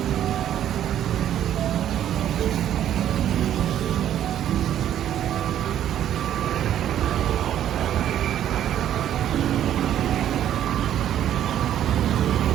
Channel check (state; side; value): quieter; left; 11.0 dB